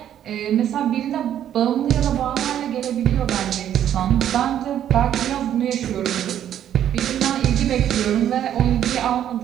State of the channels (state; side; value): quieter; left; 10.6 dB